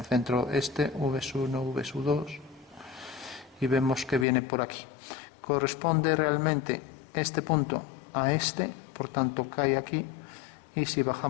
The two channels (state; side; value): drops out; right; at 4.2 s